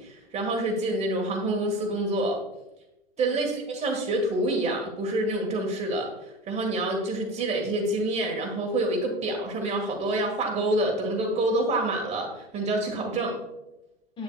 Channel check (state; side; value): normal; both; correlation 0.32